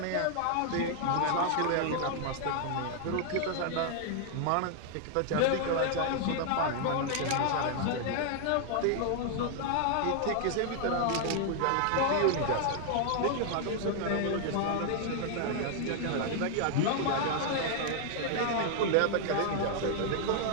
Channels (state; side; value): different; both; correlation 0.00